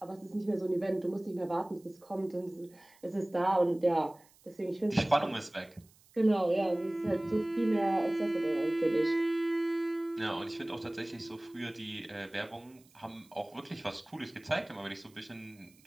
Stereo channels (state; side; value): noise; right; hiss, 29 dB below the sound